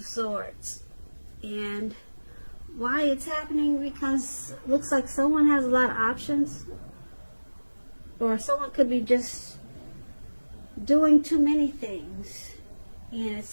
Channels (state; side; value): inverted; both; correlation -1.00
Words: Swords. And why it's happening? Because it looks like someone has a lot of options, or someone could be just doing too many things, and